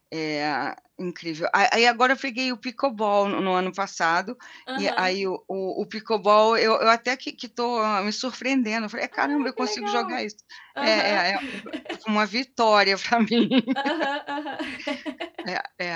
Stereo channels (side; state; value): both; identical; correlation 1.00